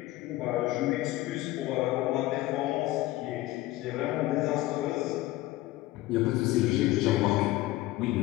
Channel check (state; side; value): quieter; right; 17.2 dB